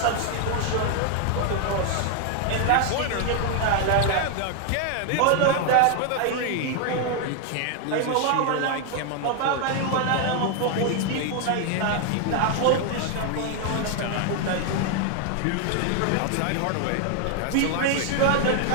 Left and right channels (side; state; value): both; different; correlation 0.01